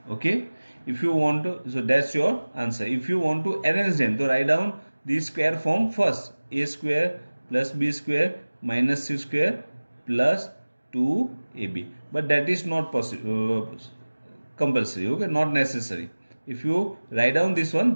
okay, if you want to, so that's your answer. If you want to arrange them, so write down the square form first, a square plus b square minus c square plus 2ab, but that is not possible, compulsory. okay, not necessary. If you write down this one,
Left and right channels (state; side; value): inverted; both; correlation -1.00